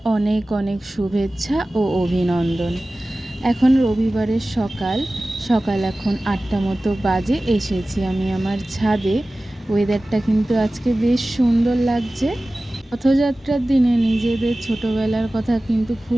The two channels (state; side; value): normal; both; correlation 0.97